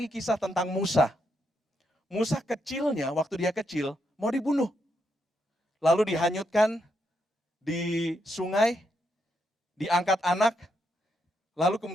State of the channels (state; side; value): normal; both; correlation 0.80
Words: kisah tentang Musa. Musa kecilnya, waktu dia kecil, mau dibunuh. Lalu dihanyutkan di sungai, diangkat anak, lalu